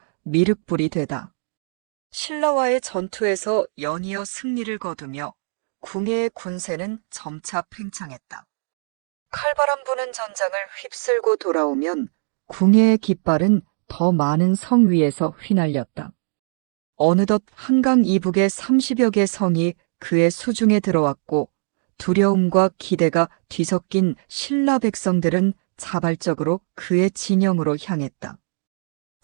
미륵불이 되다. 신라와의 전투에서 연이어 승리를 거두며 궁예의 군세는 점차 팽창했다. 칼바람 부는 전장을 휩쓸고 돌아오면 궁예의 깃발은 더 많은 성 위에서 휘날렸다. 어느덧 한강 이북의 30여 개 성이 그의 수중에 들어왔고 두려움과 기대가 뒤섞인 신라 백성들은 자발적으로 그의 진영으로 향했다.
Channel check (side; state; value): left; silent; digital silence